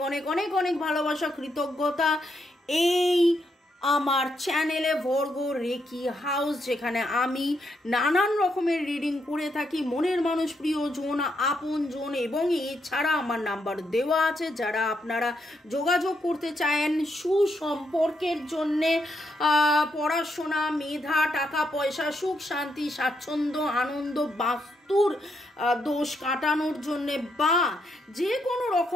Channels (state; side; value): normal; both; correlation 0.79